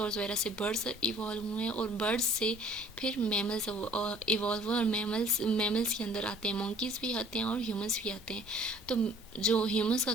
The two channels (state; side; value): normal; both; correlation 0.54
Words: वगैरह से बर्ड्स इवॉल्व हुए हैं, और बर्ड्स से फिर मैमल्स इवॉल्व हुए, और मैमल्स के अंदर आते हैं मंकीज़ भी आते हैं और ह्यूमंस भी आते हैं। तो जो ह्यूमंस का